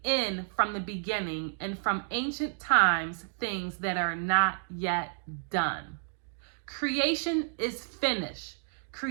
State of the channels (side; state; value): left; silent; digital silence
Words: end from the beginning, and from ancient times things that are not yet done. Creation is finished.